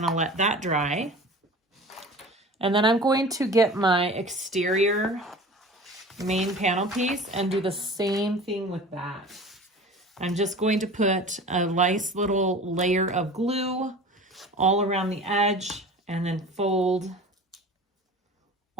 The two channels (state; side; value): normal; both; correlation 0.39